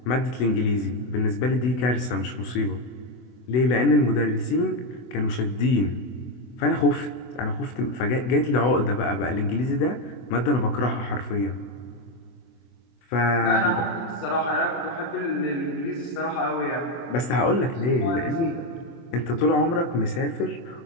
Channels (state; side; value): late; right; 24 ms